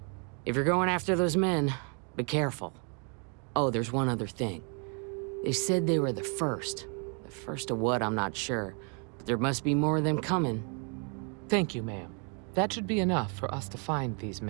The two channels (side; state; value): left; quieter; 38.9 dB